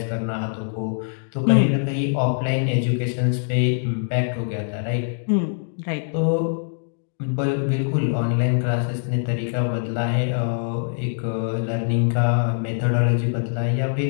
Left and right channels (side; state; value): right; silent; digital silence